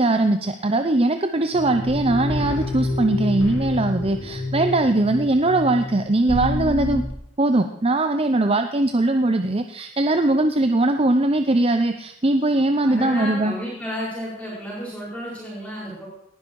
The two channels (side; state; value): both; normal; correlation 0.64